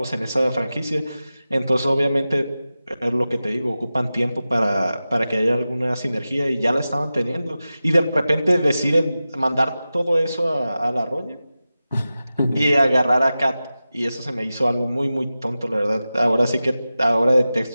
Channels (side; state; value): both; inverted; correlation -0.94